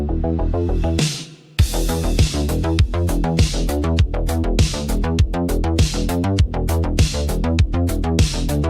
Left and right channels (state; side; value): identical; both; correlation 1.00